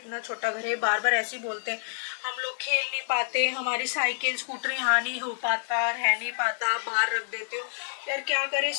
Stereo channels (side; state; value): right; silent; digital silence